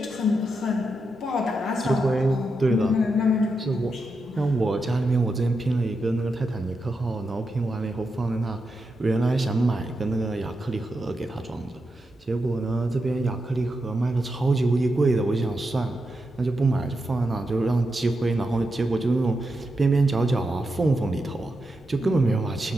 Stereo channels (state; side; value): normal; both; correlation 0.86